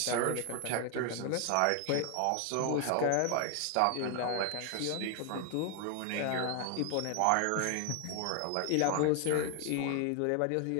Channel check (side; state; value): both; different; correlation 0.01